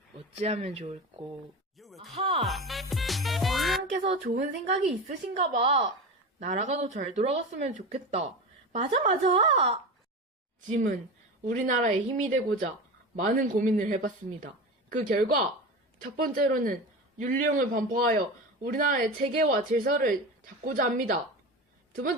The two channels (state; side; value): normal; both; correlation 0.27